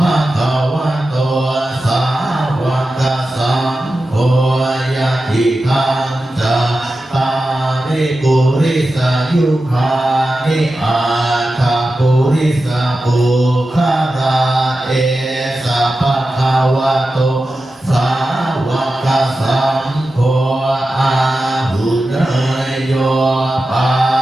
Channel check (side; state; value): both; normal; correlation 0.92